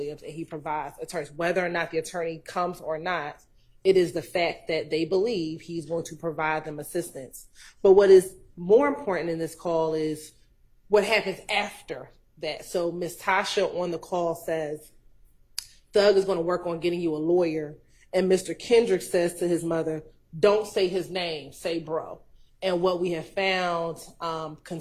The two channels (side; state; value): both; identical; correlation 1.00